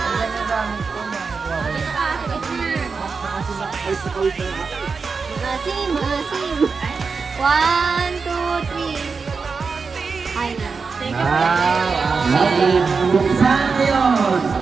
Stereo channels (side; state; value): left; quieter; 4.9 dB